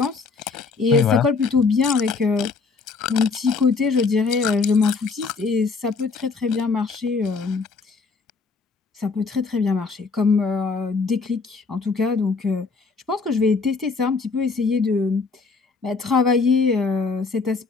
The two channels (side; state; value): right; quieter; 4.5 dB